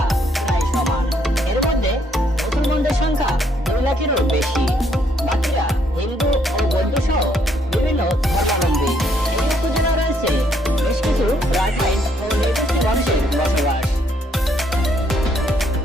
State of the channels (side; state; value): both; normal; correlation 0.70